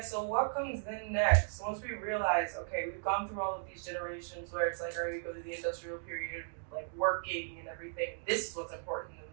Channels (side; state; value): left; silent; digital silence